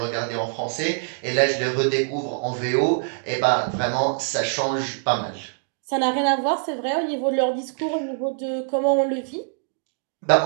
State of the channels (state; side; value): silent; left; digital silence